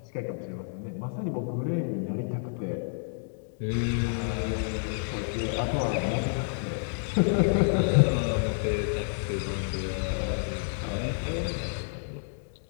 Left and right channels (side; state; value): right; silent; digital silence